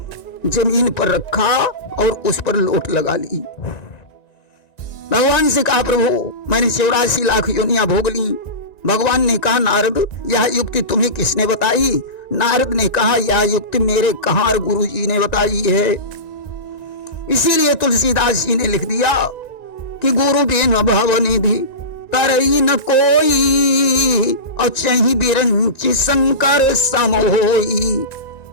जमीन पर रखा और उस पर लोट लगा ली। भगवान से कहा, प्रभु मैंने 84 लाख योनियां भोग ली। भगवान ने कहा, नारद यह युक्ति तुम्हें किसने बताई? नारद ने कहा, यह युक्ति मेरे कहार गुरु जी ने बताई है। इसीलिए तुलसीदास जी ने लिख दिया कि गुरु बिन भव निधि तरई न कोई, और चही बिरंची शंकर सम होई।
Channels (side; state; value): right; late; 1.9 ms